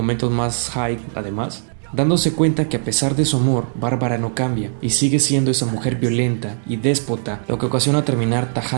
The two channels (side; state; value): left; silent; digital silence